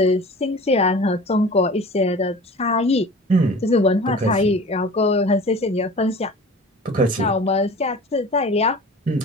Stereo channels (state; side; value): normal; both; correlation 0.40